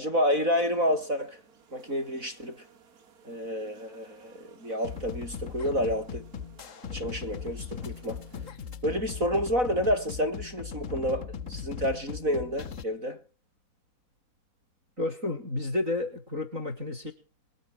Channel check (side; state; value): left; late; 4.0 ms